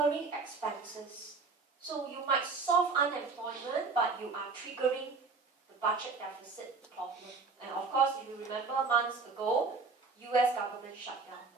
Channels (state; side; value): quieter; left; 4.4 dB